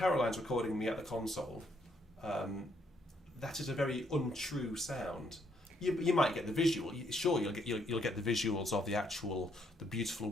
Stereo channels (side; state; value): both; normal; correlation 0.72